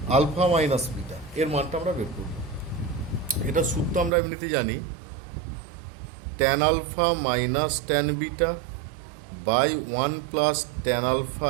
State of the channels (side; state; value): left; drops out; at 4.1 s